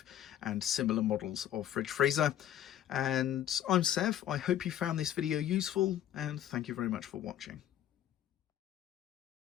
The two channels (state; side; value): quieter; right; 11.1 dB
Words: and similar models of fridge freezer. And I'm Sev. I hope you found this video useful, and thank you very much for watching.